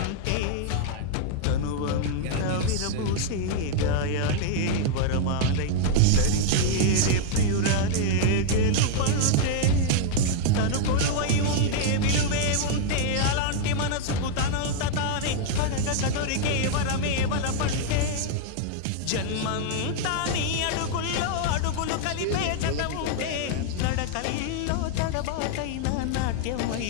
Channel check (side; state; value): both; different; correlation 0.00